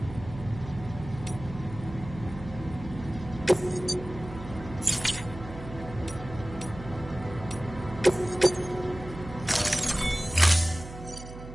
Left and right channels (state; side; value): noise; right; hum, 13 dB below the sound